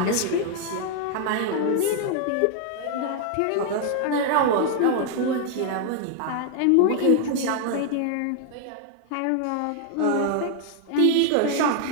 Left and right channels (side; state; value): both; different; correlation 0.00